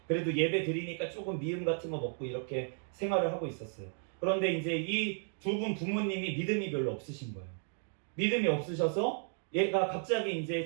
그래도 예배 드리니까 조금 미음 같은 거 먹고 이렇게 생활을 하고 있었어요. 그런데 이제 이 두 분 부모님이 믿음이 별로 없으신 거예요. 믿음이 없으셔서 얘가 갑자기 이제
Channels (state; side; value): silent; left; 55 dB below the other